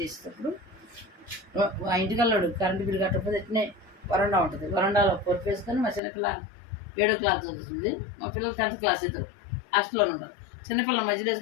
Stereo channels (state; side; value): drops out; right; at 6.0 s